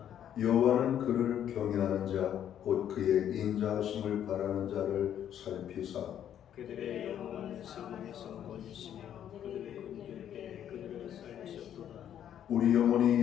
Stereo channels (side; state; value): right; quieter; 10.1 dB